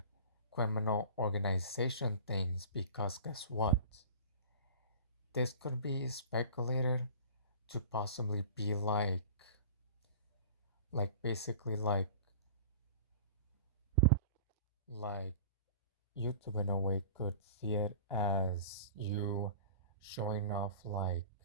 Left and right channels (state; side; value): inverted; both; correlation -0.40